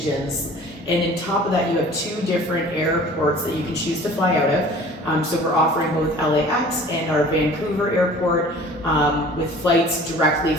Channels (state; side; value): normal; both; correlation 0.46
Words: and on top of that you have 2 different airports that you can choose to fly out of. So we're offering both LAX and our Vancouver airport, with flights directly